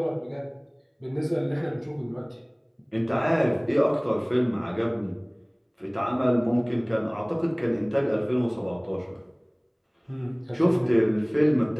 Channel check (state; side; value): identical; both; correlation 1.00